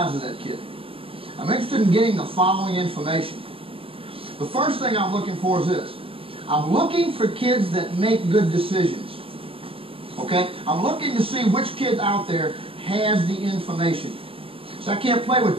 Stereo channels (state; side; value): late; left; 0.27 ms